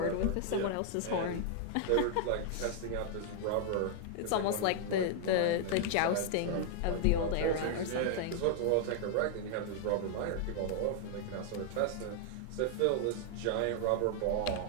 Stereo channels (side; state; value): both; different; correlation 0.00